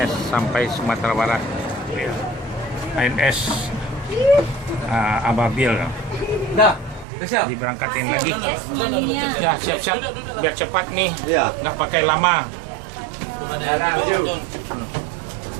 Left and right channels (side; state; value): left; drops out; at 7.1 s